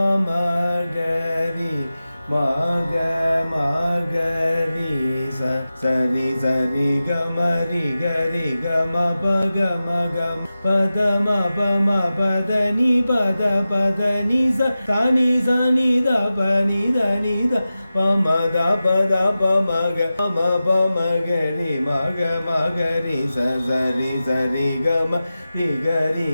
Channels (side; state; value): both; inverted; correlation -0.94